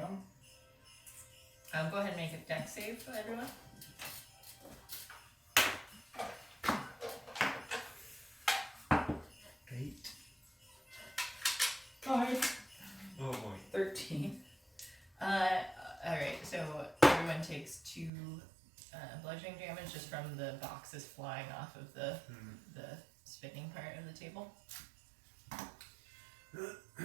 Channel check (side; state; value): left; drops out; at 18.1 s